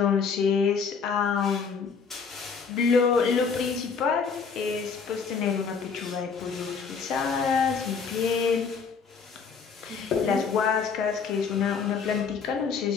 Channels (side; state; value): right; quieter; 5.7 dB